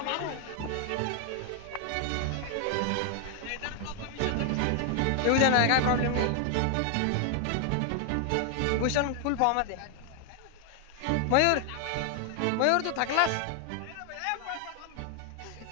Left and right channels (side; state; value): both; different; correlation 0.00